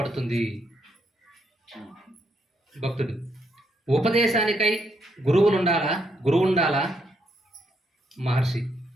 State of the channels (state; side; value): normal; both; correlation 0.76